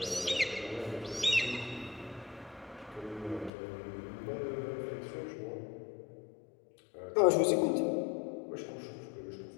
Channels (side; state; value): right; drops out; at 3.5 s